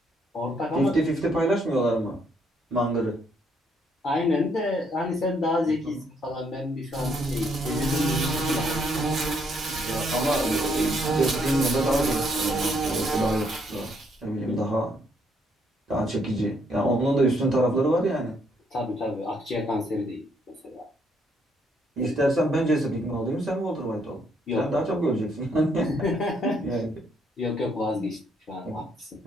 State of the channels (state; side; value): normal; both; correlation 0.71